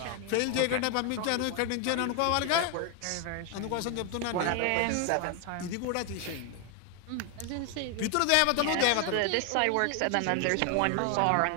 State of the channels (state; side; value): different; both; correlation 0.01